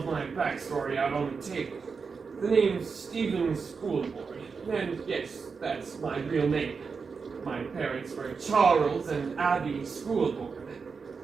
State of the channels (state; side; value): quieter; left; 5.2 dB